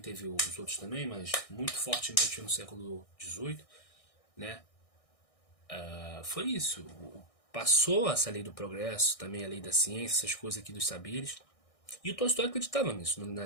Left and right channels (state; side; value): late; right; 1.6 ms